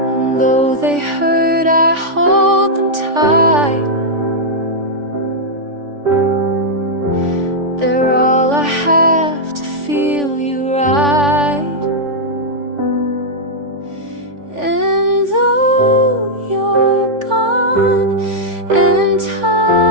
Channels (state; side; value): late; left; 3.5 ms